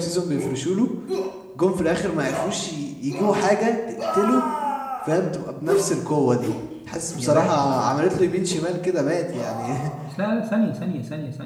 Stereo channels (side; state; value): both; identical; correlation 1.00